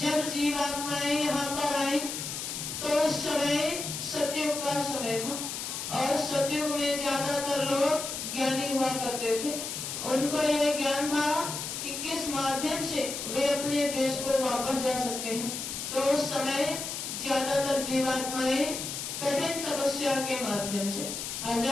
जीवात्माएं यहाँ पर आई तो उस समय सतयुग का समय था, और सतयुग में ज्यादातर लोग ज्ञानी हुआ करते थे। उनको यह ज्ञान था कि किस माध्यम से वे अपने देश को वापस जा सकते हैं। तो उस समय ज्यादातर जीवात्माएं कठिन तपस्या के माध्यम से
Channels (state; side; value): noise; left; hiss, 5 dB below the sound